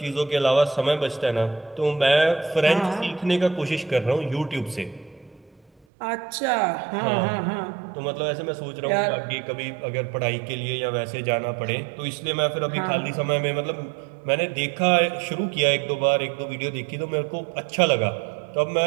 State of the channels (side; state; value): left; drops out; at 5.9 s